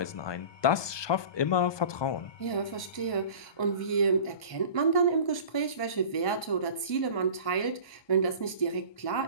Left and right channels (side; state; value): right; late; 1.2 ms